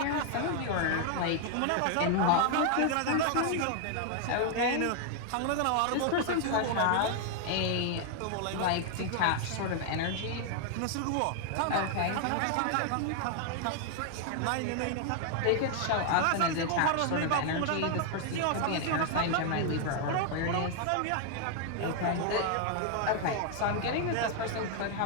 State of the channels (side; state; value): both; different; correlation 0.00